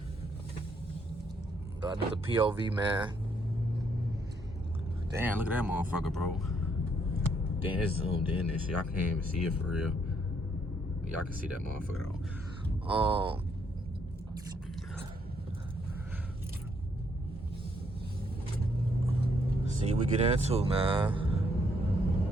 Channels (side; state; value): both; normal; correlation 0.72